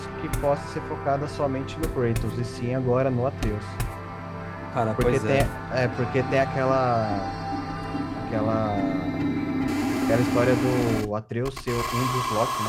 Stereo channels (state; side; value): identical; both; correlation 1.00